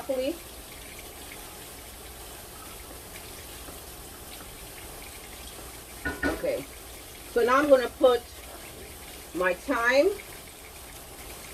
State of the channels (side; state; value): both; identical; correlation 1.00